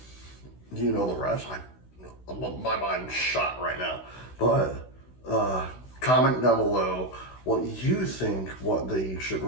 you know the rest. My mind's shot right now, but comment down below what you think, what they should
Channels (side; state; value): right; late; 16 ms